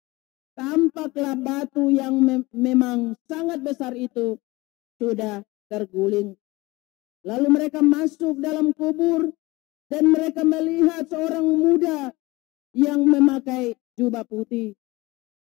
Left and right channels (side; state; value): right; quieter; 21.6 dB